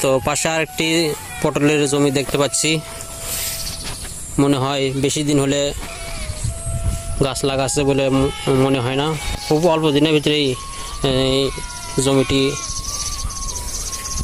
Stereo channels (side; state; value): both; identical; correlation 1.00